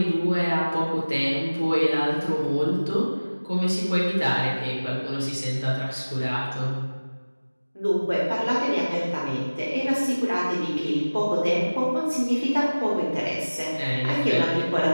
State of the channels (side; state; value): both; inverted; correlation -1.00